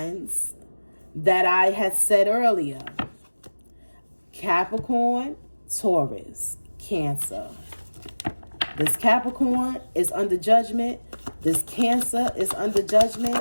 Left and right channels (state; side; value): inverted; both; correlation -1.00